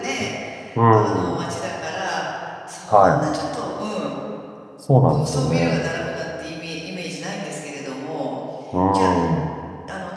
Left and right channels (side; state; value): both; identical; correlation 1.00